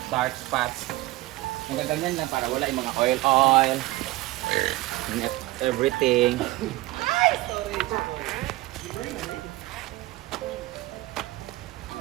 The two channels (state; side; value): quieter; left; 18.9 dB